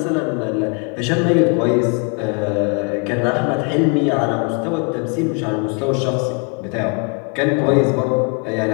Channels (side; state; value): right; quieter; 35.6 dB